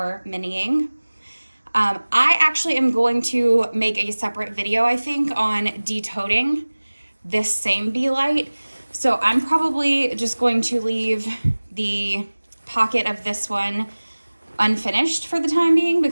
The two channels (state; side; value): inverted; both; correlation -1.00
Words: miniing. I actually am going to make a separate video, I think, on detoting this same Be Light. So I'm probably just going to leave the pocket of this one unfinished for the time being,